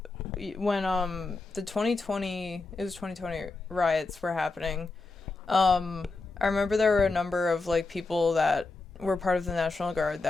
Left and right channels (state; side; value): quieter; right; 3.6 dB